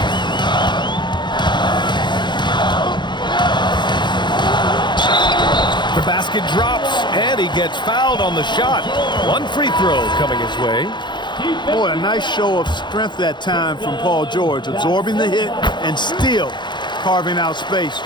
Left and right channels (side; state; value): right; late; 0.22 ms